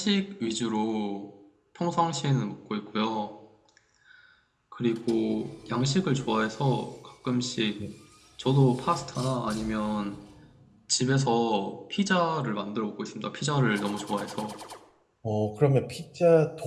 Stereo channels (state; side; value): identical; both; correlation 1.00